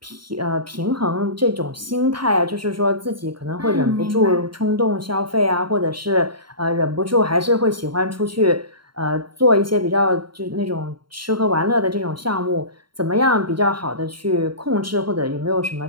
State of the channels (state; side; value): late; left; 0.73 ms